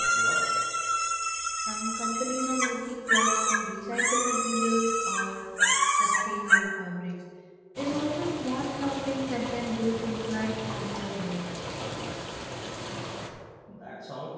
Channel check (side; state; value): both; identical; correlation 1.00